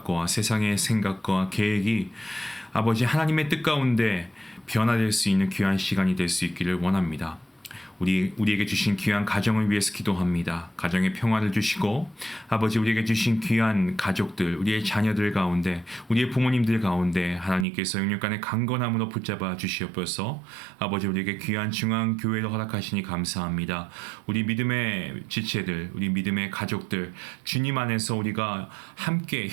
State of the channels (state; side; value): drops out; left; at 17.7 s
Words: 세상의 생각과 계획이 아버지 하나님의 뜻 가운데 변화될 수 있는 귀한 시간이 될 수 있기를 원합니다. 우리에게 주신 귀한 가정을 위해서 기도합니다. 가정의 평화를 주시고 아버지 우리에게 주신 귀한 가족들, 우리의 자녀들 가운데 우리의 부모님들 가운데 하나님께서 영육간의 강건함으로 붙잡아 주시옵소서. 아버지 우리에게 귀한 중앙교회를 허락하시니 감사합니다. 우리 믿음의 지체들, 우리 믿음의 가족들 주님 안에서 우리가 함께